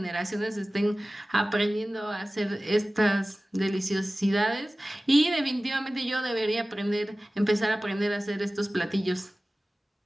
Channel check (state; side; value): normal; both; correlation 0.97